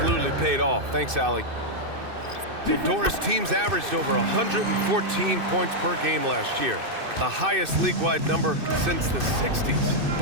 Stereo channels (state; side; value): late; left; 2.6 ms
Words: paid off. Thanks, Allie. Well, Doris, teams averaged over 114 points per game last year. The highest league-wide number since the 60s.